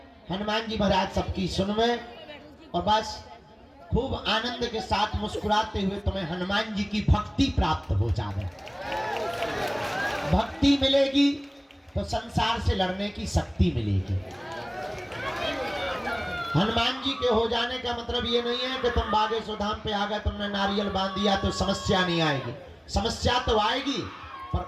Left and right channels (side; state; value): both; identical; correlation 1.00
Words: हनुमान जी महाराज सबकी सुनवे, और बस खूब आनंद के साथ मुस्कुराते हुए तुम्हें हनुमान जी की भक्ति प्राप्त हो जाए। भक्ति मिलेगी तो संसार से लड़ने की शक्ति मिलेगी। हनुमान जी के हो जाने का मतलब ये नहीं है कि तुम बागेश्वर धाम पे आ गए, तुमने नारियल बांध दिया तो समस्या नहीं आएगी। समस्या तो आएगी, पर